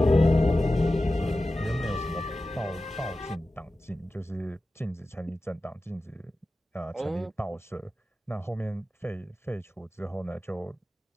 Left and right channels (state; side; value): normal; both; correlation 0.94